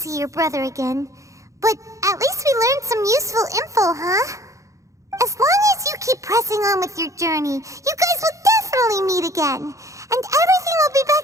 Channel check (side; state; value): left; late; 0.15 ms